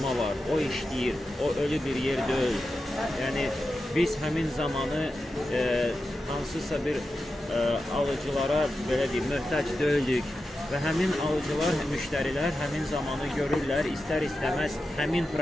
var, o işləyir, o ölü bir yer deyil. Yəni, biz həmin zamanı hansısa bir alıcılara belə deyim, möhtac deyildik və həmin alıcılar, müştərilər həmin zamanı görürlər, istər-istəməz həmin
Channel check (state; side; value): normal; both; correlation 0.91